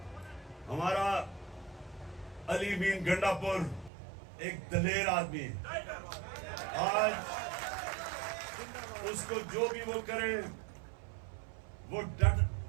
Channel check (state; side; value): drops out; left; at 3.9 s